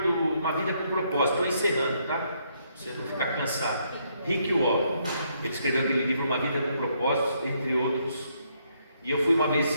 Uma Vida com Propósito, estou encerrando, tá? Pra você não ficar cansado. Rick Warren, ele escreveu aquele livro Uma Vida com Propósito, entre outros. E eu fui uma vez em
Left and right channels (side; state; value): both; inverted; correlation -0.73